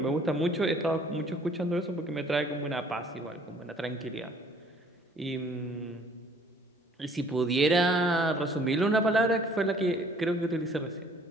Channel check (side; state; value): both; normal; correlation 0.57